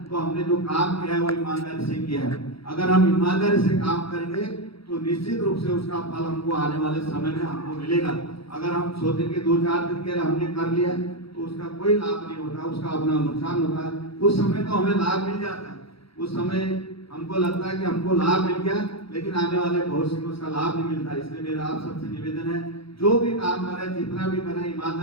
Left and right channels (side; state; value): right; late; 0.76 ms